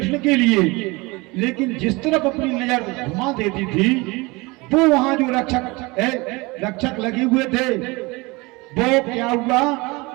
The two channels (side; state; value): left; quieter; 24.5 dB